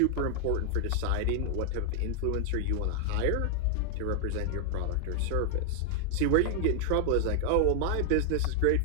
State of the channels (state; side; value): different; both; correlation 0.00